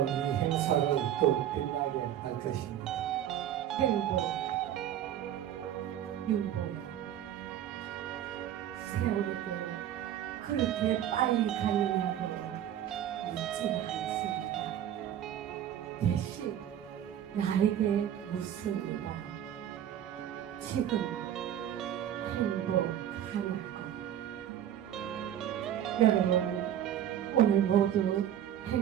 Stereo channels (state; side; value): quieter; left; 10.8 dB